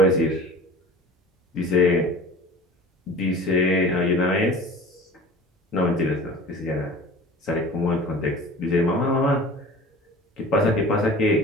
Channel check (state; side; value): normal; both; correlation 0.41